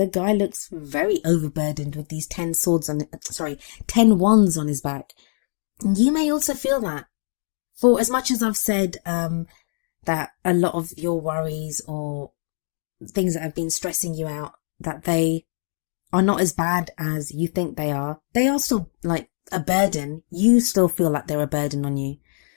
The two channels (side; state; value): right; silent; 63 dB below the other